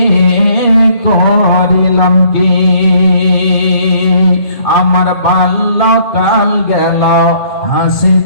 করিলাম কি? আমার বাল্যকাল গেল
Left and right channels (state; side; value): late; right; 2.5 ms